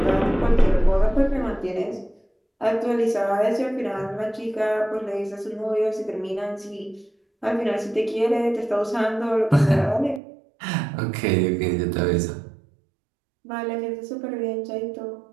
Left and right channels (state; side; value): drops out; left; at 10.2 s